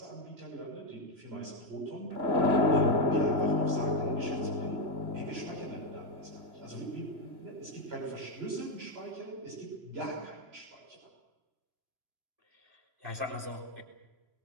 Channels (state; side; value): late; left; 3.0 ms